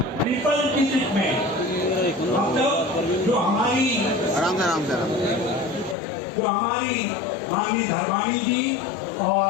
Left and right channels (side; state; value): right; drops out; at 6.0 s